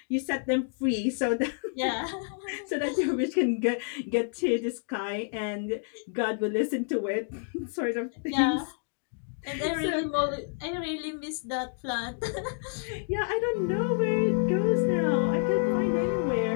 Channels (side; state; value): right; silent; 59 dB below the other